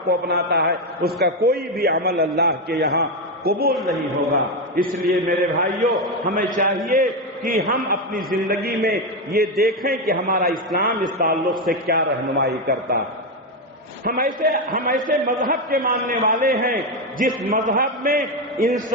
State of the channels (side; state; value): both; normal; correlation 0.09